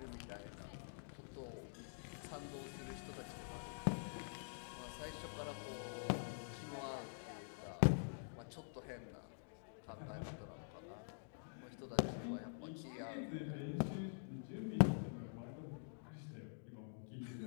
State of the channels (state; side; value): silent; right; digital silence